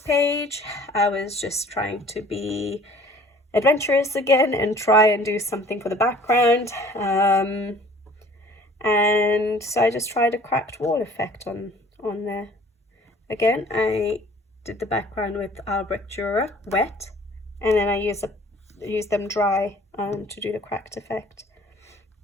I was just trying to be adventurous again and try and do something for the background. And so I just tried a cracked wall effect on there. Again, I did the background with Albrecht Dürer wet, and then I used them dry to do the cracked effect.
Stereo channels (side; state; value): both; normal; correlation 0.51